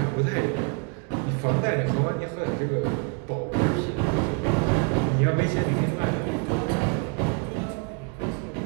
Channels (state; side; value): quieter; left; 32.7 dB